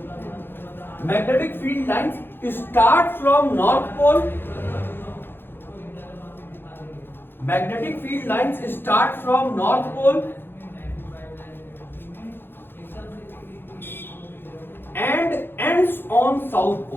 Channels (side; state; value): right; late; 0.10 ms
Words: Magnetic field lines start from north pole. Magnetic field lines start from north pole and ends on south